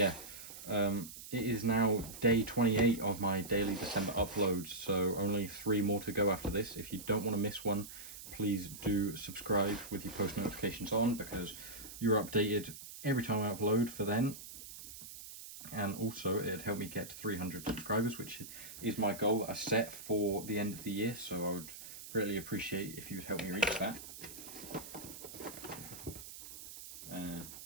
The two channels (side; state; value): right; noise; hiss, 13 dB below the sound